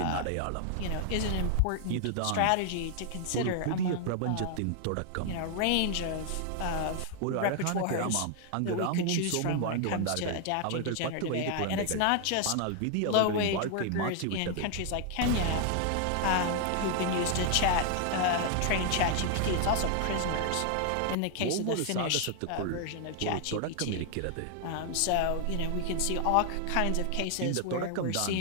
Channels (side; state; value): both; different; correlation 0.00